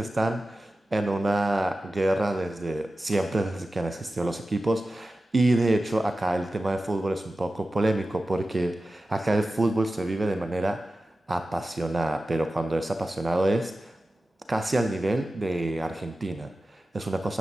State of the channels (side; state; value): both; normal; correlation 0.94